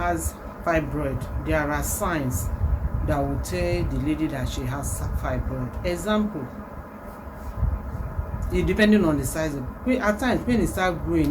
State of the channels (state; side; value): identical; both; correlation 1.00